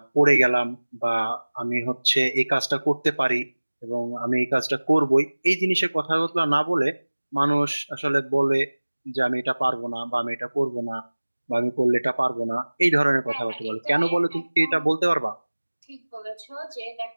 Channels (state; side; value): inverted; both; correlation -1.00